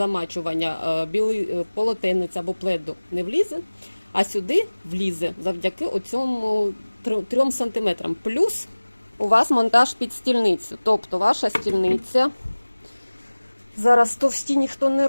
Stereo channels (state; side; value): inverted; both; correlation -1.00